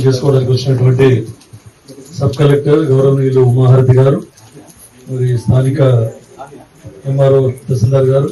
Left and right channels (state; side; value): identical; both; correlation 1.00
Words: చేసుకోవడానికి వచ్చినటువంటి సబ్ కలెక్టర్ గౌరవనీయులు ఉమాహారతి గారు, మరి స్థానిక ఎంఆర్ఓ తహసీల్దార్ గారు,